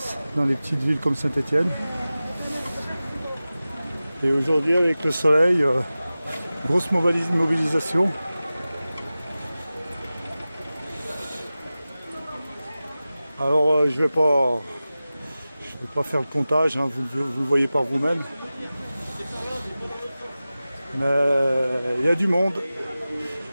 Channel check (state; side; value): inverted; both; correlation -0.96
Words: dans les petites villes comme Saint-Étienne. Et aujourd'hui, avec le soleil, grosse mobilisation. Alors je vais pas faire le comptage, hein, vous le voyez par vous-même. Mais il y a du monde.